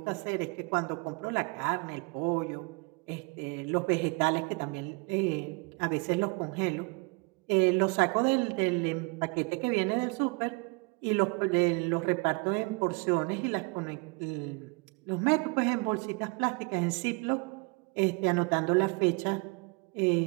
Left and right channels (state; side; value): quieter; left; 30.8 dB